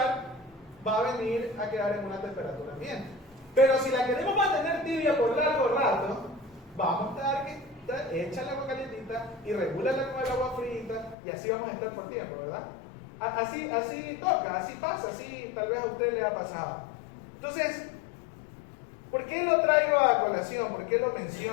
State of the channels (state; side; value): drops out; right; at 11.2 s